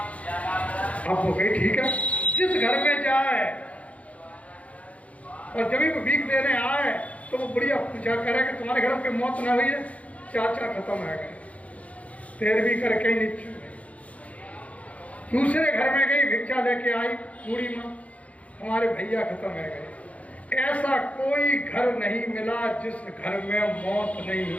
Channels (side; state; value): right; late; 0.066 ms